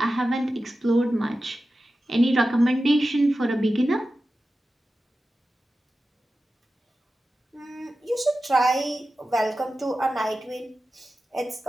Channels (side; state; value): both; normal; correlation 0.93